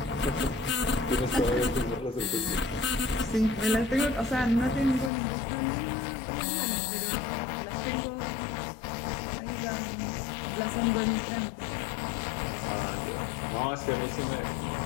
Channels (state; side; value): drops out; right; at 5.1 s